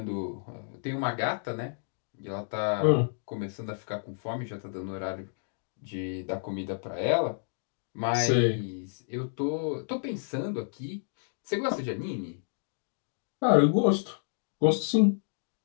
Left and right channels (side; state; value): right; silent; digital silence